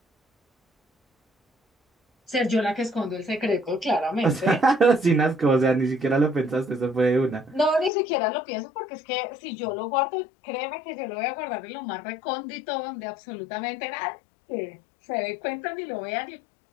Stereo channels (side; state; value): right; drops out; at 7.9 s